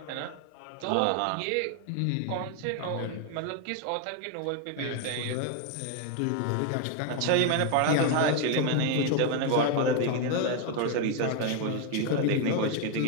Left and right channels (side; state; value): both; different; correlation 0.01